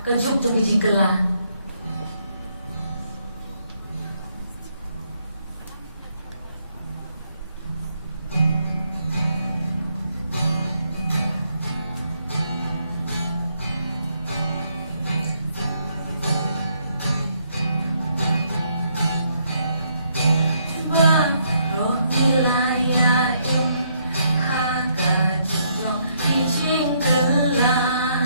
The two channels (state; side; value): inverted; both; correlation -0.73